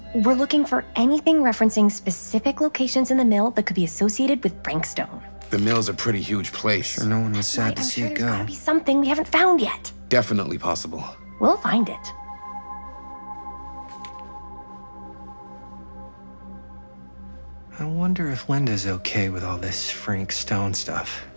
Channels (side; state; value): both; inverted; correlation -1.00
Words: We're looking for anything referencing specific locations in the mill that could be associated with Frank Stone. The mill's a pretty huge place. Sure, no one was sad Right, to I'm see sure it there's go. gotta be something we haven't found yet. Definitely possible. We'll find it. I wonder if Linda's okay with all this Frank Stone stuff.